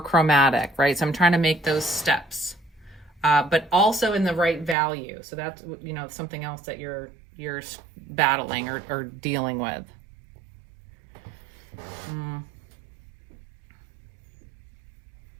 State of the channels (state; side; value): drops out; left; at 4.8 s